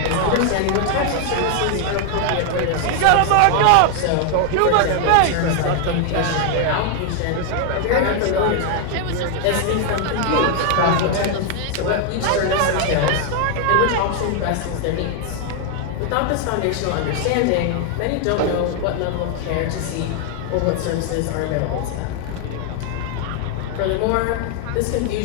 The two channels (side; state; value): both; different; correlation 0.00